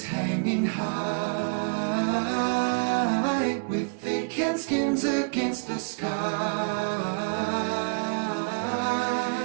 hanging high, with thick and skins against the sky.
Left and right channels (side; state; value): left; quieter; 35.7 dB